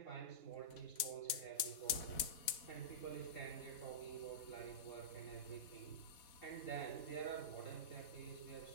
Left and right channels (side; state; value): right; late; 4.0 ms